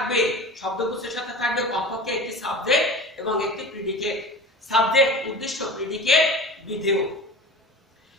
শব্দগুচ্ছের সাথে থাকবে কমপক্ষে একটি সাবজেক্ট এবং একটি প্রিডিকেট। সাবজেক্ট উদ্দেশ্য, predicate বিধেয়।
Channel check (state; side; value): normal; both; correlation 0.35